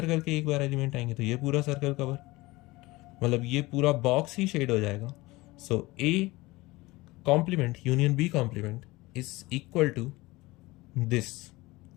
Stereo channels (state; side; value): quieter; right; 20.9 dB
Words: के एक बार एलिमेंट आएंगे तो ये पूरा सर्कल कवर। मतलब ये पूरा बॉक्स ही शेड हो जाएगा। So A complement union B complement is equal to this